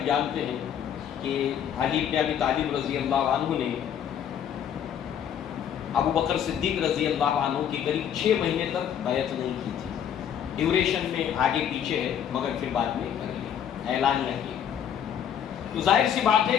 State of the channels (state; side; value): quieter; right; 9.1 dB